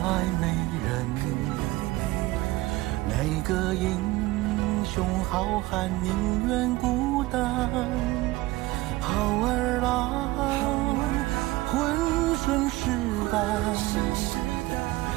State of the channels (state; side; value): quieter; left; 19.4 dB